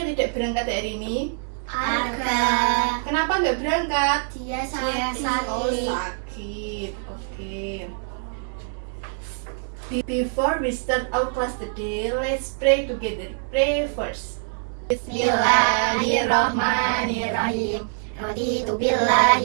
tidak berangkat hari ini? Arga. Kenapa nggak berangkat? Dia sakit. Oh, sakit. Oke. Before we start our class today, let's pray together. Pray first. Bismillahirrahmanirrahim. Raditu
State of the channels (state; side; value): silent; left; 62 dB below the other